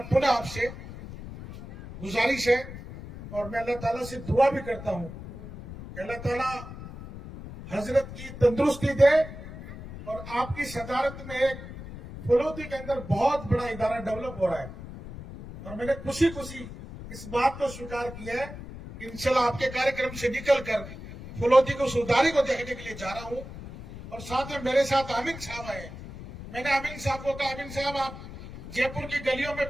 पुनः आपसे गुजारिश है और मैं अल्लाह ताला से दुआ भी करता हूं कि अल्लाह ताला हजरत की तंदुरुस्ती दे और आपकी सदारत में एक फलोदी के अंदर बहुत बड़ा इदारा डेवलप हो रहा है। और मैंने खुशी खुशी इस बात को स्वीकार किया है कि इंशाल्लाह आपके कार्यक्रम से निकलकर फलोदी को सुधारी को देखने के लिए जा रहा हूं। और साथ में मेरे साथ आमिन साहब आए। मैंने आमिन साहब को कहा, आमिन साहब आप जयपुर की गलियों में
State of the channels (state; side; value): noise; left; rumble, 12 dB below the sound